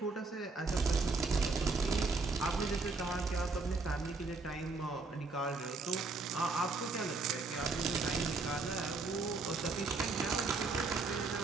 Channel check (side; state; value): left; quieter; 3.9 dB